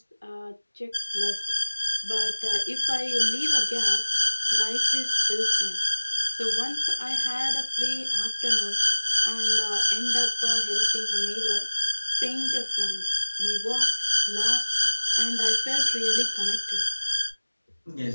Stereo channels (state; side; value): inverted; both; correlation -1.00